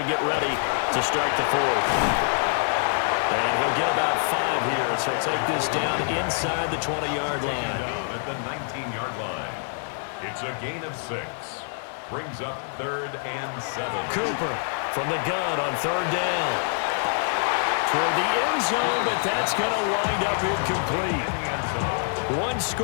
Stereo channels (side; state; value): right; silent; 61 dB below the other